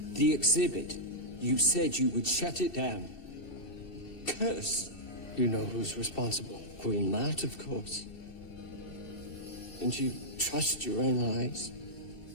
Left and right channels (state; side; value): late; right; 2.7 ms